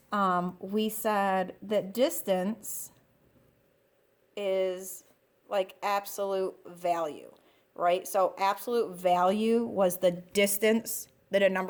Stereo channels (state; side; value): identical; both; correlation 1.00